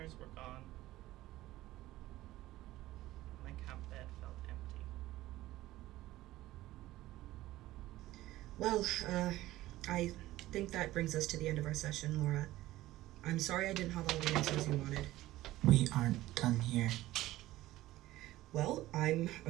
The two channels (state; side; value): quieter; left; 16.3 dB